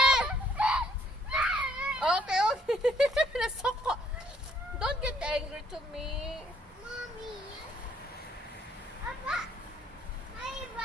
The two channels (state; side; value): normal; both; correlation 0.65